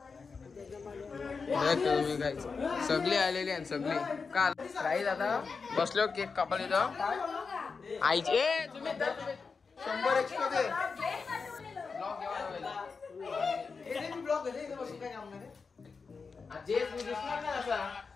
सगळी आलेली आहेत सगळी. काल काही आता बसलो केक कापायला इथं आईचे तुम्ही 100 एक्स्ट्रा दे.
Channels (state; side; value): quieter; right; 4.9 dB